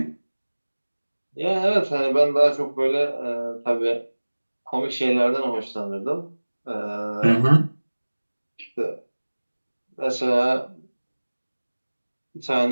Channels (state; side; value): inverted; both; correlation -1.00